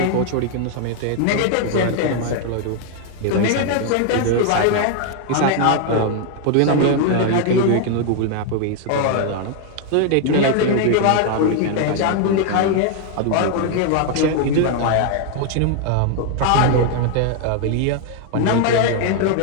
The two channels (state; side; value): different; both; correlation 0.00